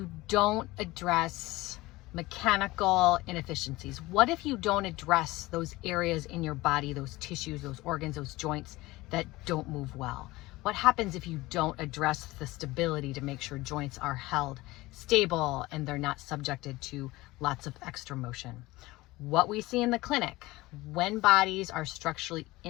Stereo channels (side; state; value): right; quieter; 19.7 dB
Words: don't address mechanical inefficiencies? What if you don't address those areas in your body, those tissues, those organs, those joints that don't move well? What happens if you don't address the stability to make sure joints are held stable and they're not subjected to lots of extra motion? What we see in the clinic when bodies are structurally